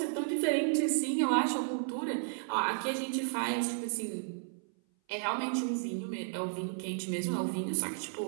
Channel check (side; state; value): left; silent; 56 dB below the other